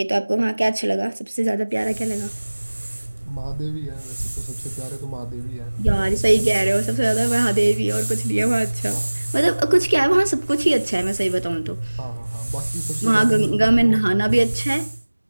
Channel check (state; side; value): inverted; both; correlation -1.00